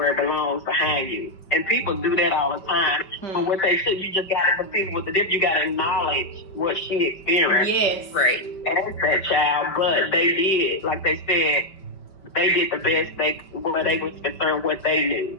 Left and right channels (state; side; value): late; right; 5.3 ms